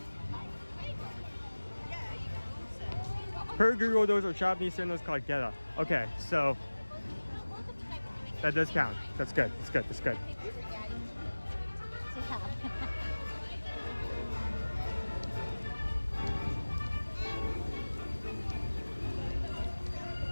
Per Google, those are Japanese sandals called Geta. Okay, so that does count. That's good. That's good.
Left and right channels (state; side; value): inverted; both; correlation -1.00